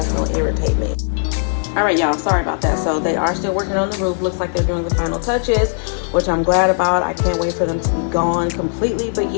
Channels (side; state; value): right; silent; digital silence